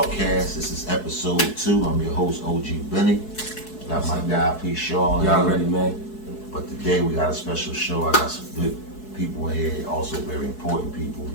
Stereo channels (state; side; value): late; right; 4.7 ms